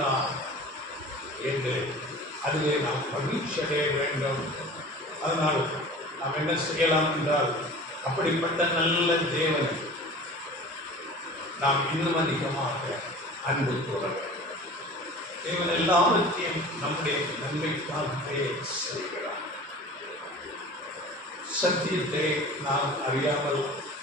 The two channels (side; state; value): both; normal; correlation 0.40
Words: என்று அதிலே நாம் மகிழ்ச்சி அடைய வேண்டும். அதனால் நாம் என்ன செய்யலாம் என்றால், அப்படிப்பட்ட நல்ல தேவன் நாம் இன்னும் அதிகமாக அன்பு கூற வேண்டும். தேவன் எல்லாவற்றையும் நம்முடைய நன்மைக்காகவே செய்கிறார். சத்தியத்தை நாம் அறியாமல்